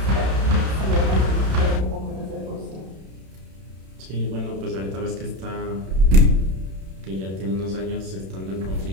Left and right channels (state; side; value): late; left; 31 ms